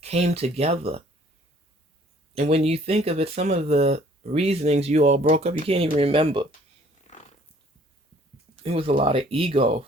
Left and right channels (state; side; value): normal; both; correlation 0.58